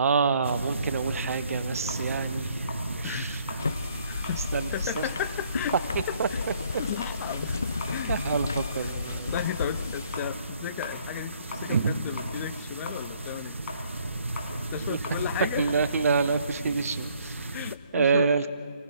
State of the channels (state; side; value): inverted; both; correlation -0.64